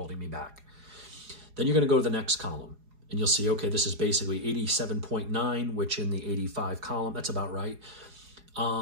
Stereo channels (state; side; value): late; left; 4.8 ms